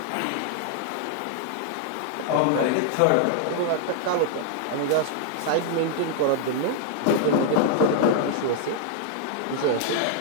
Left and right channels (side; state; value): both; different; correlation -0.01